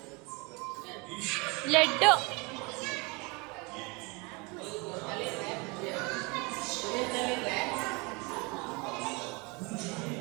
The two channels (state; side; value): quieter; left; 28.2 dB